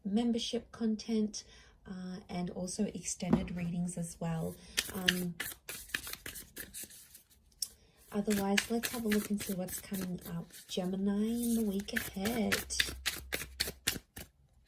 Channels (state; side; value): identical; both; correlation 1.00